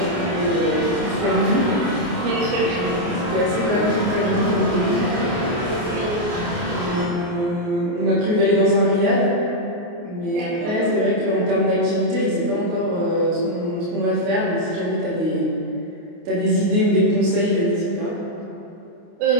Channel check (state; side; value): late; left; 29 ms